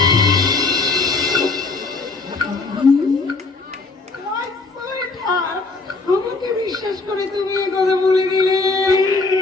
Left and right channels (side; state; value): right; quieter; 3.8 dB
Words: আমাকে বিশ্বাস করে তুমি এ কথা বলে দিলে।